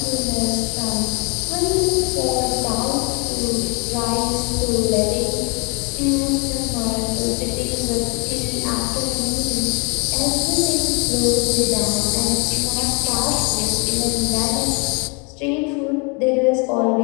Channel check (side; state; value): right; quieter; 32.7 dB